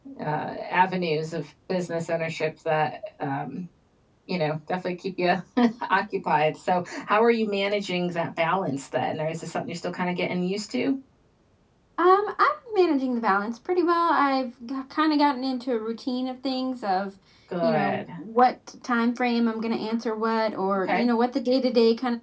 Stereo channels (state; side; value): identical; both; correlation 1.00